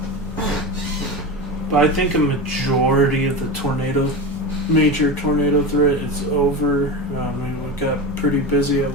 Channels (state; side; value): normal; both; correlation 0.24